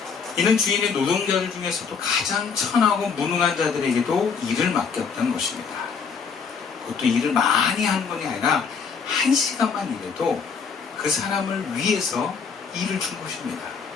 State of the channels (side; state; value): right; quieter; 5.9 dB